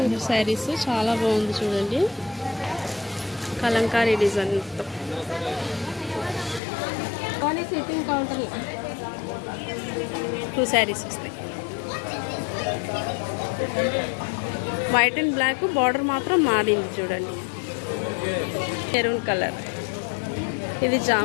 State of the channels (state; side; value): drops out; right; at 6.6 s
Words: శారీస్. చాలా బాగుంది చూడండి, కలంకారీ డిజైన్. 2 శారీస్ వస్తాయి. వైట్ అండ్ బ్లాక్, బార్డర్ మాత్రం మారింది చూడండి. మెరూన్ కలర్, ఇది